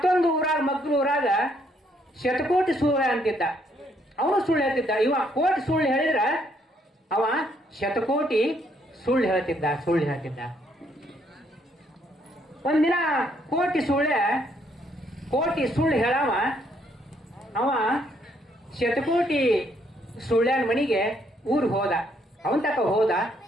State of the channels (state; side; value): normal; both; correlation 0.70